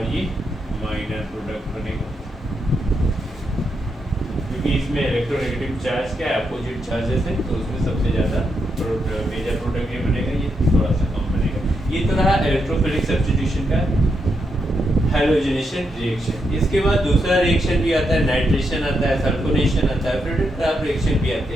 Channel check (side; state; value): both; normal; correlation 0.82